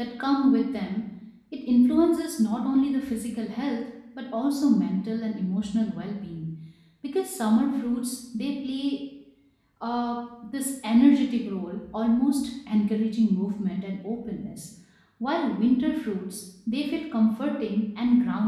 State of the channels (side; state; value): both; identical; correlation 1.00